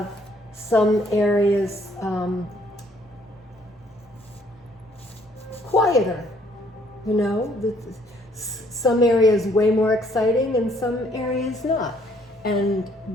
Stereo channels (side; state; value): both; normal; correlation 0.64